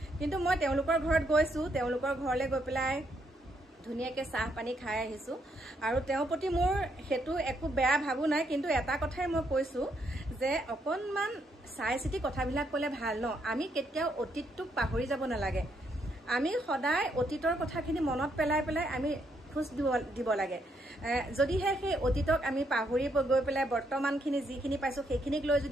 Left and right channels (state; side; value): normal; both; correlation 0.75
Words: কিন্তু মই তেওঁলোকৰ ঘৰত গৈছোঁ তেওঁলোকৰ ঘৰলৈ গৈ পেলাই ধুনীয়াকৈ চাহ পানী খাই আহিছোঁ আৰু তেওঁৰ প্ৰতি মোৰ সেইটো একো বেয়া ভাবো নাই কিন্তু এটা কথাই মই কৈছোঁ যে অকণমান চাই চিতি কথাবিলাক ক'লে ভাল ন আমি কেতিয়াও অতীতটোক পাহৰি যাব নালাগে আমি সদায় অতীতৰ কথাখিনি মনত পেলাই আমি খোজ দিব লাগে যদিহে সেই অতীতক আমি পাহৰি গৈ পেলাই বৰ্তমানখিনি যিখিনি পাইছোঁ সেইখিনিক লৈ